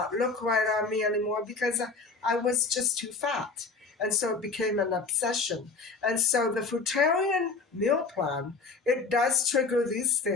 look right on me anymore because I was just too fat. And so it became an obsession. And so the Fruitarian meal plan, it does trigger these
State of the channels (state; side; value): quieter; right; 4.2 dB